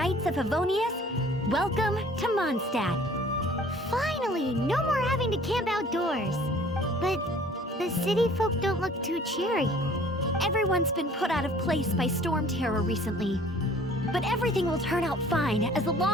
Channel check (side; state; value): both; normal; correlation 0.52